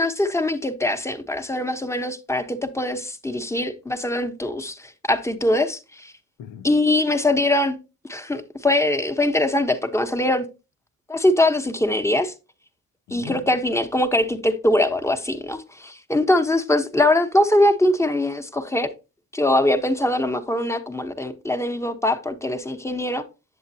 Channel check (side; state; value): both; normal; correlation 0.66